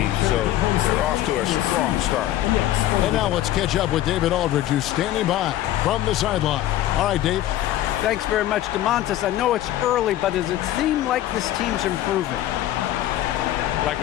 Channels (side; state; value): right; quieter; 13.6 dB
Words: so they're off to a strong start. And now let's catch up with David Aldridge, who's standing by from the sideline. All right, Dave. Thanks very much, DeMontis. I know it's early, but does it seem like this team's improving? Like